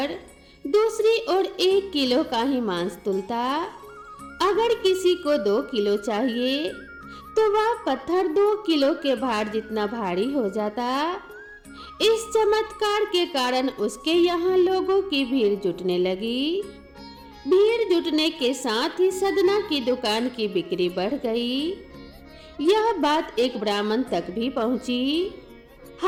दूसरी ओर 1 किलो का ही मांस तुलता। अगर किसी को 2 किलो चाहिए तो वह पत्थर 2 किलो के भार जितना भारी हो जाता। इस चमत्कार के कारण उसके यहाँ लोगों की भीड़ जुटने लगी। भीड़ जुटने के साथ ही सदना की दुकान की बिक्री बढ़ गई। यह बात एक ब्राह्मण तक भी पहुंची।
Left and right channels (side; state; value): both; identical; correlation 1.00